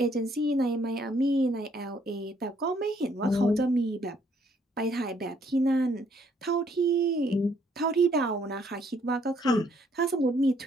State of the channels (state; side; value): normal; both; correlation 0.67